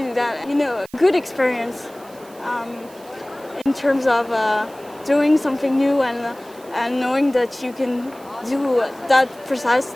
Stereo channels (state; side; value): noise; right; hiss, 24 dB below the sound